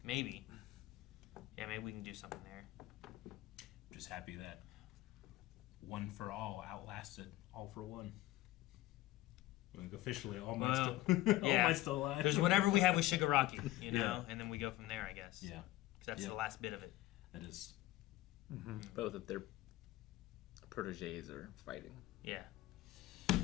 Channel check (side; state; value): right; quieter; 16.6 dB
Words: Maybe. Yeah, maybe we can do something there. Just happy that One for All outlasted All for One. Like officially, All Might's still alive. There's whatever we have with Shigaraki, you know, and then we go from there, I guess. Yeah. Because that's the last bit of it. That is. Mm-hmm. Both of their proteges are fighting. Yeah.